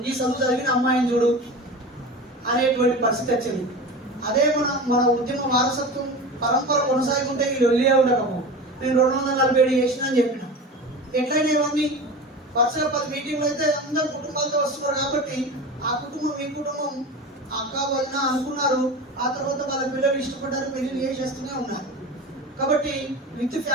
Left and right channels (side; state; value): both; normal; correlation 0.31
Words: ఈ చదువు చదివిన అమ్మాయిని చూడు అనేటువంటి పరిస్థితి వచ్చింది. అదే మన ఉద్యమ వారసత్వం పరంపర కొనసాగుంటే ఈ లొల్లియే ఉండకపో. నేను 247 చేసిన అని చెప్పిన. ఎట్లయినా ఇవన్నీ వరుసగా 10 మీటింగ్లు అయితే అందరు కుటుంబాలతో వస్తున్నారు కాబట్టి ఆ కుటుంబం ఈ కుటుంబం అక్క వదిన అనుకున్నారు. ఆ తర్వాత వాళ్ళ పిల్లలు ఇష్టపడ్డారు, పెళ్లి చేసేస్తూనే ఉన్నారు. కాబట్టి విత్